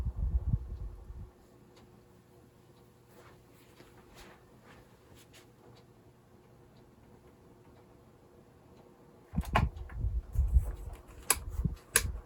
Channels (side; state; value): both; identical; correlation 1.00